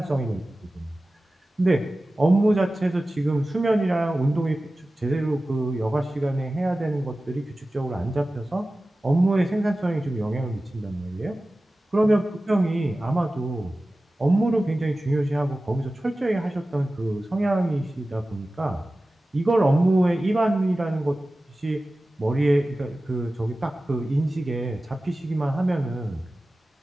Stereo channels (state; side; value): normal; both; correlation 0.96